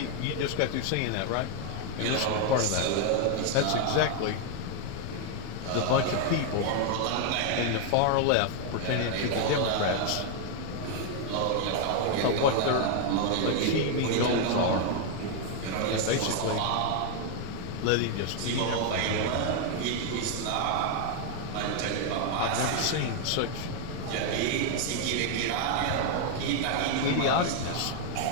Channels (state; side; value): different; both; correlation 0.00